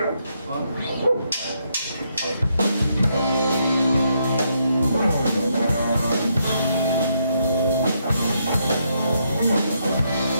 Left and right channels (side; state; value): both; inverted; correlation -0.76